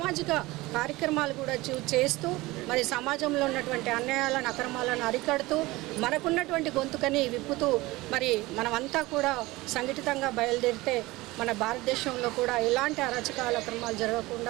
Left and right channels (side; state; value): left; quieter; 20.3 dB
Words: కార్యక్రమాలు కూడా చేస్తూ మరి సమాజంలో ఉన్నటువంటి అన్యాయాలను, అక్రమాలను అరికడుతూ మనకున్నటువంటి గొంతుకని విప్పుతూ మరి మనమంతా కూడా సంఘటితంగా బయలుదేరితే మన భారతదేశంలో కూడా ఎలాంటి అరాచకాల అక్రమాలు